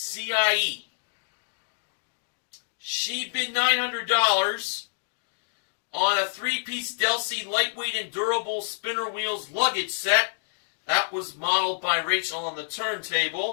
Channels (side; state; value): right; silent; digital silence